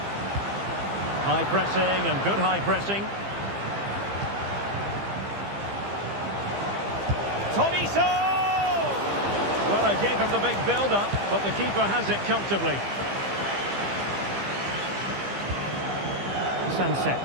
High pressing and good high pressing. Tolisso! Well, I gave him the big build-up, but the keeper has it comfortably. Sunset.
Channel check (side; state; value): left; late; 15 ms